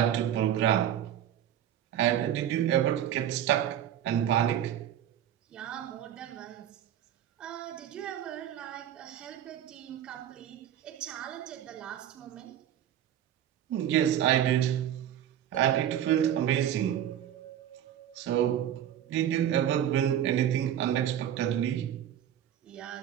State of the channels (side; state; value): left; quieter; 10.6 dB